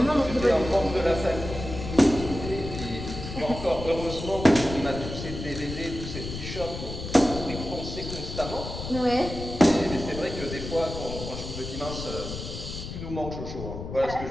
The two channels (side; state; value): left; noise; rumble, 8 dB below the sound